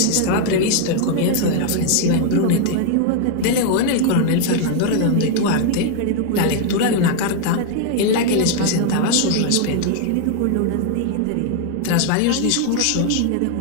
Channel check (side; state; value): both; different; correlation 0.00